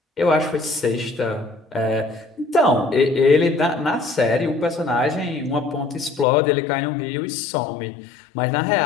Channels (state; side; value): drops out; right; at 6.2 s